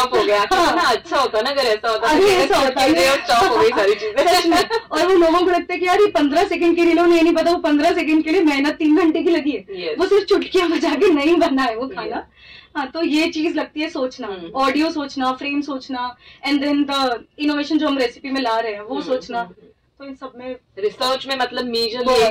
गया। ना अच्छा होता ना अगर ऐसा होता, ऐसा होता है, चॉप हो गई सारी चीजें। और वो लोगों को लगता है कि यार ये 15 सेकंड की रील, उन्हें नहीं पता वो 15 सेकंड के लिए मेहनत 3 घंटे की लगी है, वो सिर्फ चुटकियां बजा के नहीं बना है वो खाना। हाँ, तो ये चीज लगती है सोचना, ऑडियो सोचना, फ्रेम सोचना, एंड देन द इनोवेशन जो हम रेसिपी में ला रहे हैं वो सोचना। तो इन सब में रिसर्च में मतलब मेजर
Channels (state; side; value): identical; both; correlation 1.00